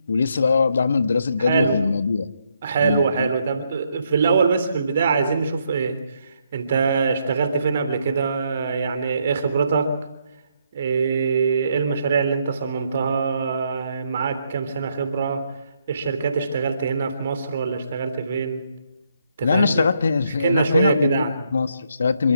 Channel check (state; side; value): inverted; both; correlation -0.75